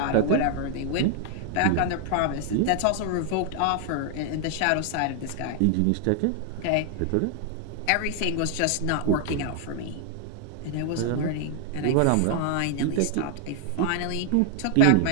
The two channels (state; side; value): different; both; correlation 0.00